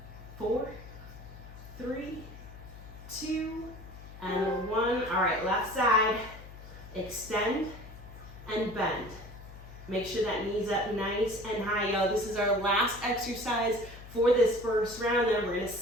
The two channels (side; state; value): left; noise; hum, 16 dB below the sound